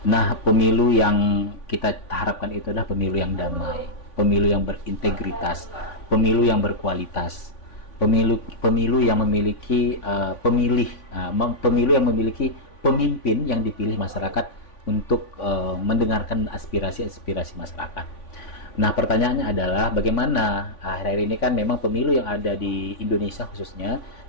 Nah, pemilu yang kita harapkan itu adalah pemilu yang damai, pemilu yang berintegritas, pemilu yang berkualitas, pemilu yang memiliki pemilu yang memiliki pemimpin yang dipilih masyarakat untuk mendengarkan aspirasi-aspirasi masyarakat. Nah, pertanyaannya adalah bagaimana akhir-akhir ini kan memang pemilu yang ada di Indonesia khususnya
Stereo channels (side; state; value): right; late; 3.5 ms